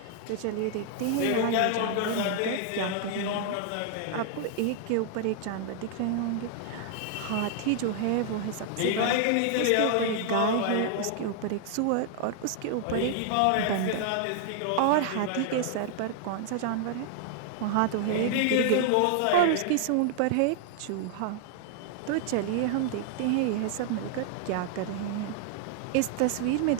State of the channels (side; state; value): both; different; correlation 0.00